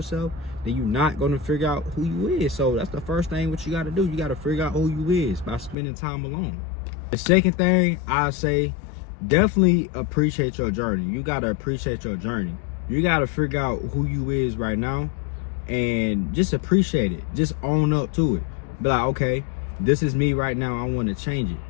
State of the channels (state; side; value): drops out; right; at 5.8 s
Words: then you're not going to figure out who you is. So that's the first thing what you got to do. You got to figure out who you is by spending time alone. The second thing I say, definitely appreciate your journey. You got to appreciate your journey. You got to figure out who you is right now and just appreciate it. Just own up to it. Be like, okay, this is me right now. I want to change it.